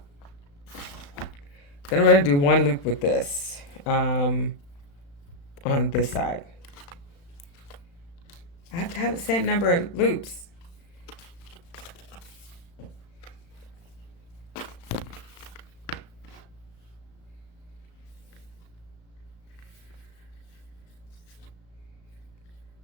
Then I'm going to do 1 loop with this on this side. I have to have the same number of loops. So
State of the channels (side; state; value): right; late; 35 ms